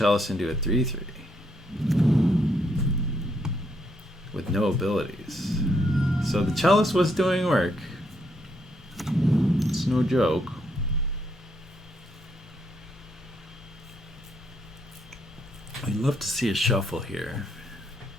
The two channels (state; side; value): normal; both; correlation 0.75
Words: into a 3/3 with no abilities. So the Chalice was doing work. It's no joke. I'd love to see a shuffle here.